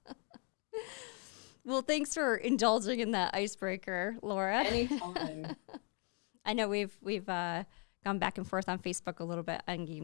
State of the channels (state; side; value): quieter; right; 35.2 dB